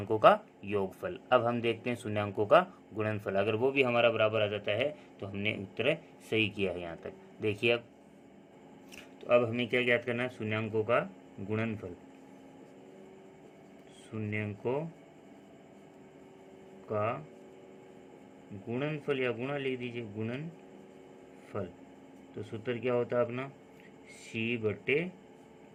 का योगफल। अब हम देखते हैं शून्यांकों का गुणनफल। अगर वो भी हमारा बराबर आ जाता है तो हमने उत्तर सही किया है यहाँ तक। देखिए अब, तो अब हमें क्या ज्ञात करना है, शून्यांकों का गुणनफल। शून्यांकों का गुणनफल या गुणा लिख दीजिए, गुणनफल। तो सूत्र क्या होता है अपना, C/A,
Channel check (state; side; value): identical; both; correlation 1.00